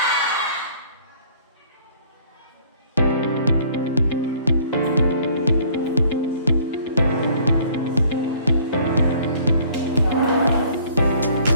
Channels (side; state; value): both; inverted; correlation -0.56